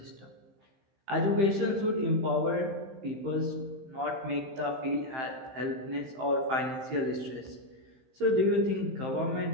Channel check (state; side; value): late; left; 15 ms